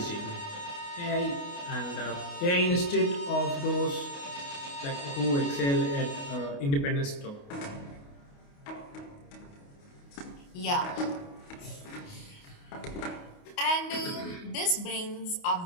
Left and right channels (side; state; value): right; late; 28 ms